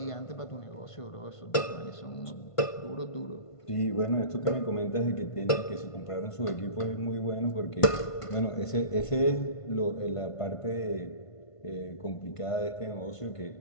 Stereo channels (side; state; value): right; late; 1.5 ms